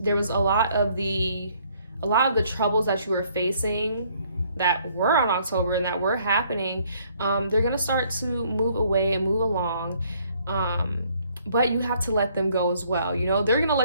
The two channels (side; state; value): both; inverted; correlation -0.65